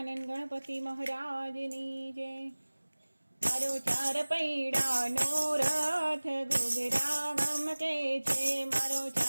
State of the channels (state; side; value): inverted; both; correlation -1.00